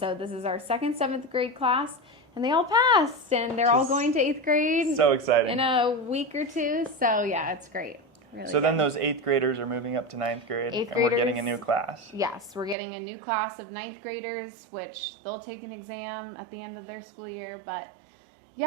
this is our second 7th grade class, and they all passed, and they're all going to 8th grade. So exciting. In a week or two. So yeah, it's great. Really so then those 8th graders are moving up to 9th grade, 8th and graders, we're getting a new class. Yes, we're getting a new class of 9th graders, which they'll take an exam at the end of their school year. But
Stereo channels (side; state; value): left; drops out; at 12.8 s